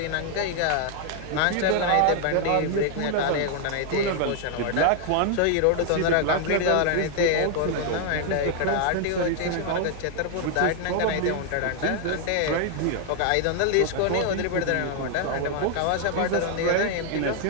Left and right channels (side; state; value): both; different; correlation 0.00